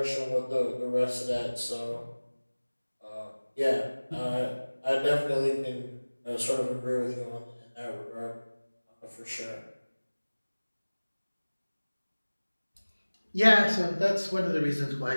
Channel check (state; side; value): inverted; both; correlation -1.00